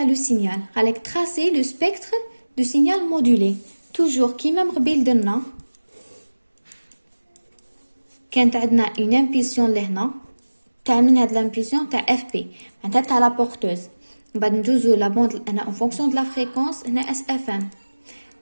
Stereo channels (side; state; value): both; inverted; correlation -1.00